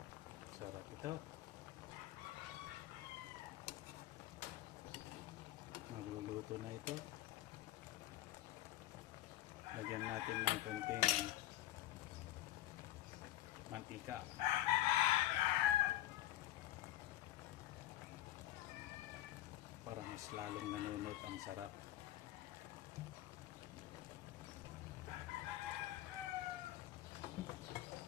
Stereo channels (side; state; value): right; quieter; 14.6 dB